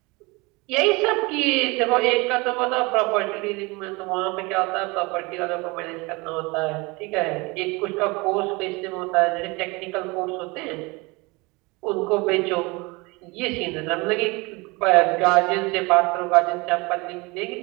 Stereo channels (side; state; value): left; quieter; 25.5 dB